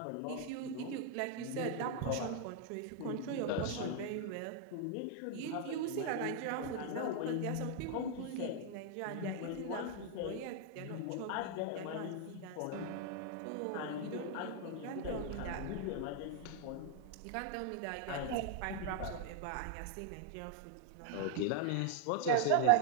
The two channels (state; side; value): different; both; correlation 0.00